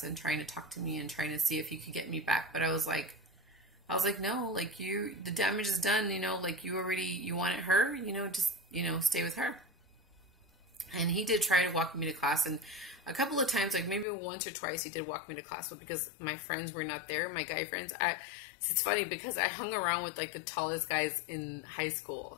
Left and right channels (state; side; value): drops out; right; at 14.1 s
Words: and trying to talk to me and trying to see if he could get me back. But I was like, no, like the damage is done, like you wanted her, just, stay with her. And he did try to walk me to class. And a couple of times, like maybe once or twice, he did walk me to class. But because my friends were not there, my guy friends, it's funny because I hung around with like the tallest guys in high school